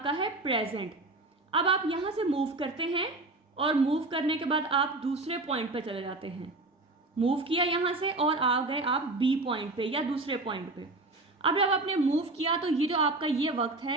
है प्रेजेंट। अब आप यहाँ से मूव करते हैं और मूव करने के बाद आप दूसरे पॉइंट पे चले जाते हैं। मूव किया यहाँ से और आ गए आप बी पॉइंट पे या दूसरे पॉइंट पे। अब जब आपने मूव किया तो ये जो आपका ये वक्त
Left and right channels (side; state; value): left; quieter; 3.0 dB